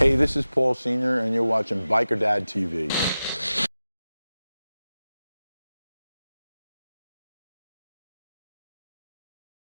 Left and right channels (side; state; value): both; inverted; correlation -0.94